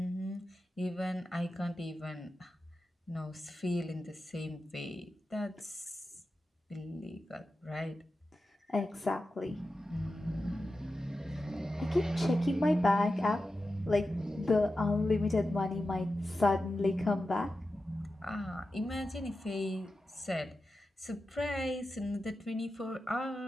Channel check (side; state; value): both; normal; correlation 0.92